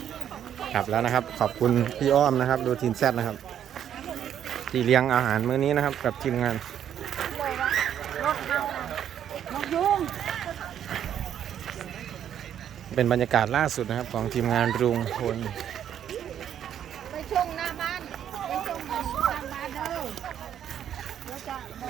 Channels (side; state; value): left; quieter; 9.7 dB